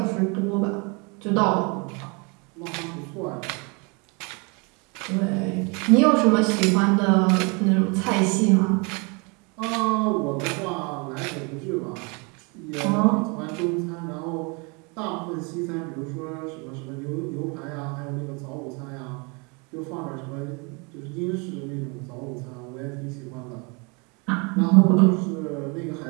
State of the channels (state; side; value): quieter; left; 31.2 dB